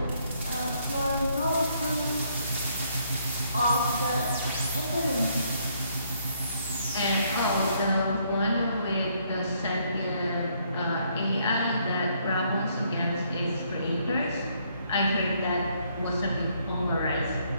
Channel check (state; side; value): inverted; both; correlation -0.70